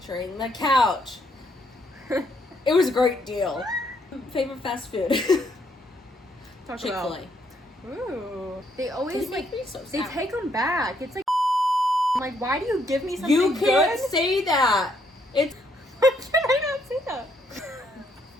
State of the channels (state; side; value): normal; both; correlation 0.72